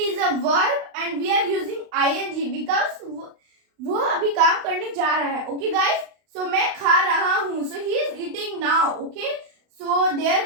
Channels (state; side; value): late; left; 35 ms